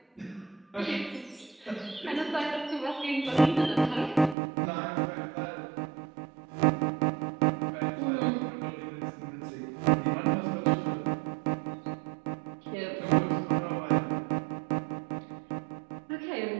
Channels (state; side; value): drops out; left; at 4.4 s